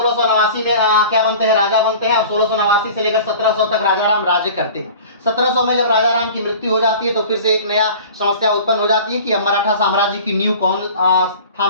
में क्या बनते हैं, राजा बनते हैं और 1689 से लेकर 1700 तक राजा राम राज्य करते हैं। 1700 में जब राजा राम की मृत्यु हो जाती है तो फिर से एक नया समस्या उत्पन्न हो जाती है कि अब मराठा साम्राज्य की नींव कौन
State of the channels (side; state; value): both; inverted; correlation -0.41